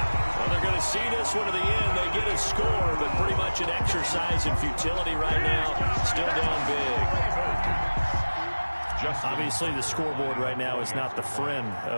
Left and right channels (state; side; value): inverted; both; correlation -1.00